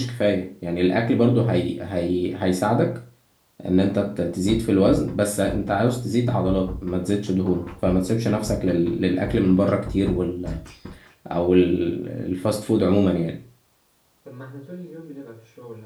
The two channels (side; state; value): both; identical; correlation 1.00